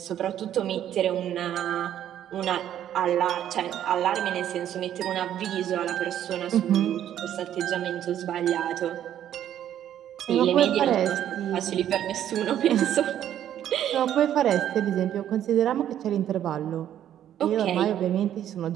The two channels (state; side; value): quieter; left; 10.9 dB